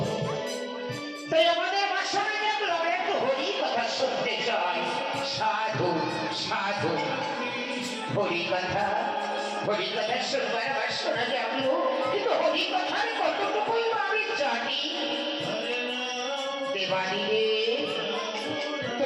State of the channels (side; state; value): both; identical; correlation 1.00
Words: তাই আমাদের বাসায় দেখলাম একটু হরি কথা শুনতে চাই। সাধু সাধু হরি কথা শুনবার আবার শোনা যাবো, কিন্তু হরি কথার কতটুকুই আমি জানি। দেবাদিলে